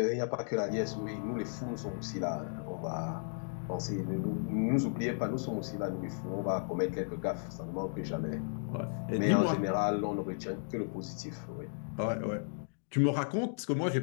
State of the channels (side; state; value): right; silent; digital silence